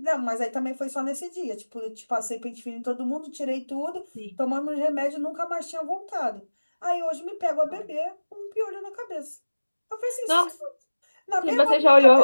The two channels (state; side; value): inverted; both; correlation -1.00